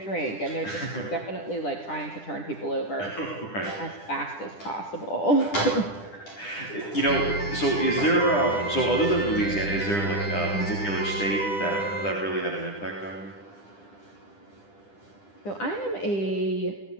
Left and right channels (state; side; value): late; right; 10 ms